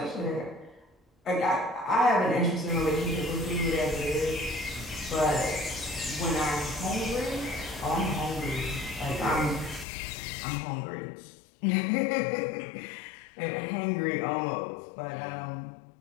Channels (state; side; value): drops out; right; at 9.9 s